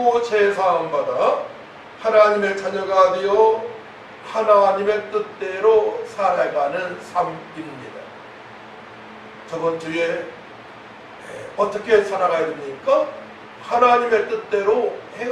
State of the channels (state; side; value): identical; both; correlation 1.00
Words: 죄사함 받아 하나님의 자녀가 되어 하나님의 뜻대로 살아가는 삶입니다. 저번 주에 어떻게 살아가야 됩니까? 하나님의 뜻대로